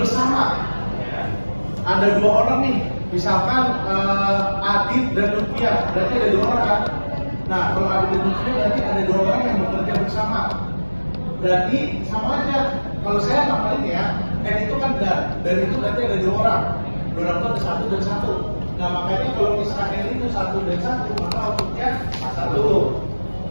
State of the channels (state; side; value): inverted; both; correlation -1.00